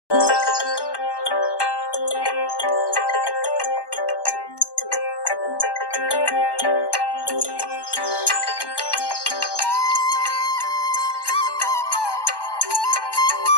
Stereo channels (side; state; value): right; late; 1.1 ms